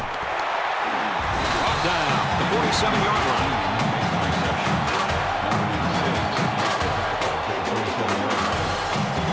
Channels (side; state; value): both; identical; correlation 1.00